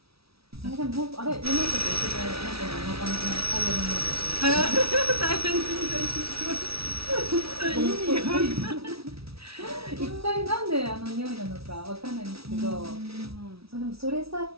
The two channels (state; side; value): late; left; 0.76 ms